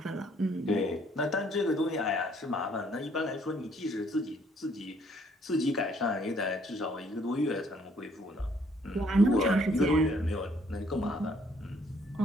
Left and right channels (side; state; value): both; normal; correlation 0.65